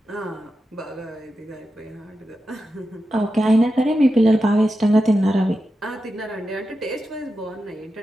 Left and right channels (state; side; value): normal; both; correlation 0.90